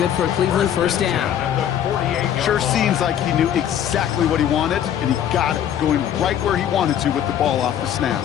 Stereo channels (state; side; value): quieter; right; 10.0 dB